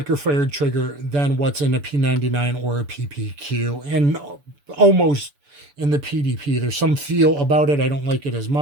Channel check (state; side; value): late; left; 6.9 ms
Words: fired trigger than what's in a P99 or a PPQ, and almost in the PDP. There's some feel about it. I don't like it as